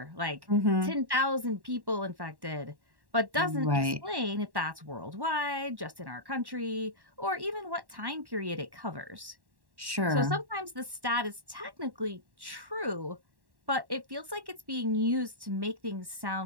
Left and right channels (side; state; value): left; late; 1.1 ms